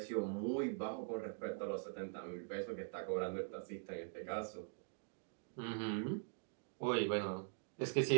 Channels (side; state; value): left; silent; digital silence